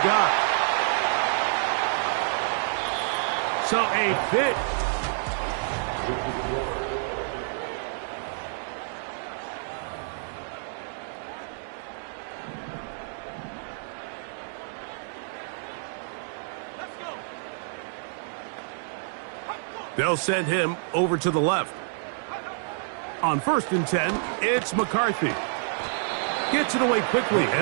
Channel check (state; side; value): silent; left; digital silence